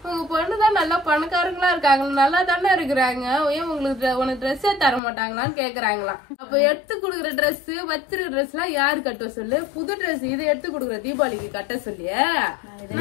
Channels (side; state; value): right; drops out; at 5.0 s